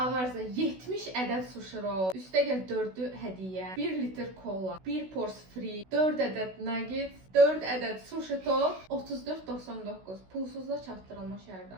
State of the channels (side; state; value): left; late; 16 ms